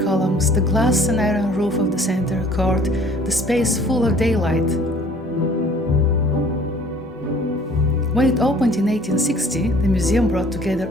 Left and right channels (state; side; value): normal; both; correlation 0.53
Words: columns, the glass and iron roof of the center court, the space full of daylight. When it opened in 1860, the museum brought